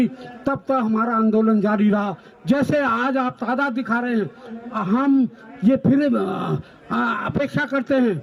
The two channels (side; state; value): both; identical; correlation 1.00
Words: तब तक हमारा आंदोलन जारी रहा। जैसे आज आप तादाद दिखा रहे हैं, हम ये फिर अपेक्षा करते